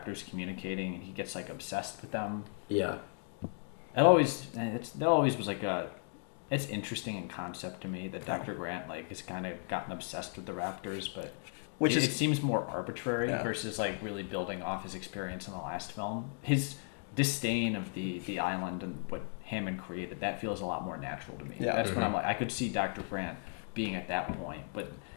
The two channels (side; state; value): right; silent; 54 dB below the other